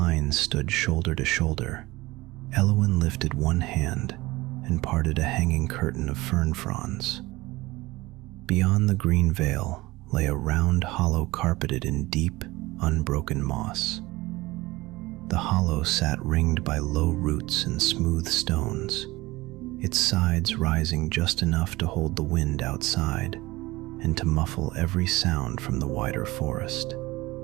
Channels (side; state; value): left; quieter; 20.2 dB